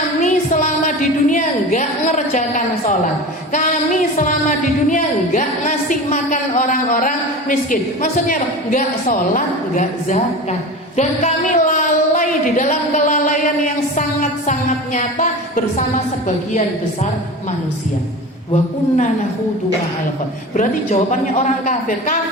selama di dunia enggak ngerjakan sholat. Kami selama di dunia enggak ngasih makan orang-orang miskin. Maksudnya apa? Enggak sholat, enggak zakat. Dan kami lalai di dalam kelalaian yang sangat-sangat nyata bersama sebagian besar manusia. Wa kunna nakhudu ma'al khaidin. Berarti jawabannya orang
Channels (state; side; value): normal; both; correlation 0.32